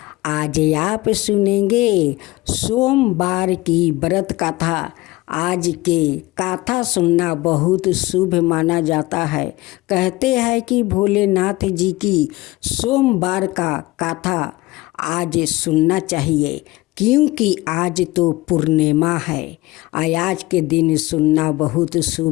आज आप सुनेंगे सोमवार की व्रत कथा। आज के कथा सुनना बहुत शुभ माना जाता है। कहते हैं कि भोलेनाथ जी की सोमवार का कथा आज सुनना चाहिए, क्योंकि आज तो पूर्णिमा है। आज के दिन सुनना बहुत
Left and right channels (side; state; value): right; quieter; 20.0 dB